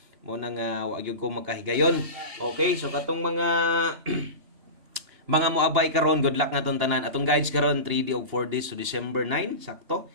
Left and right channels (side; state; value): left; late; 2.9 ms